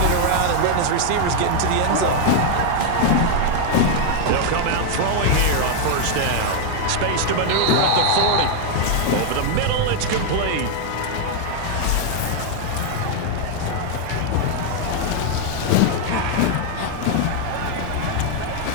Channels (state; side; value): different; both; correlation 0.00